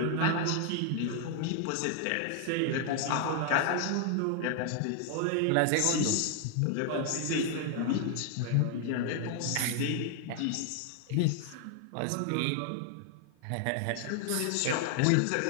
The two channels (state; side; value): different; both; correlation 0.00